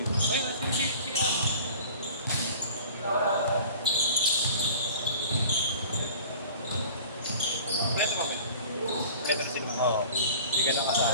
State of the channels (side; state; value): both; inverted; correlation -0.43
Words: Ay, sige iabot. Pwede ba ba? Pwede na sila. Oo. Hindi ka